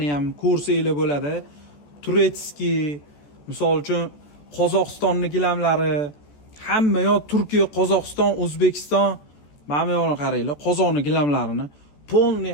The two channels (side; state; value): right; late; 14 ms